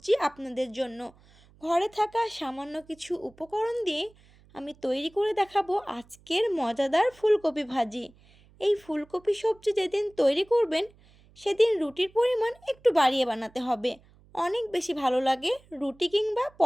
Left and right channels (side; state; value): right; noise; hum, 28 dB below the sound